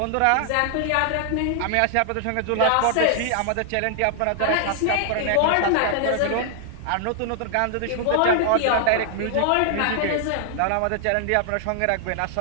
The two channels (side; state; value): both; different; correlation 0.00